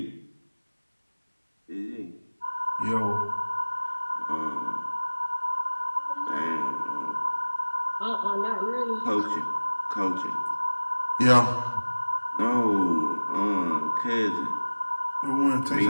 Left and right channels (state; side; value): inverted; both; correlation -1.00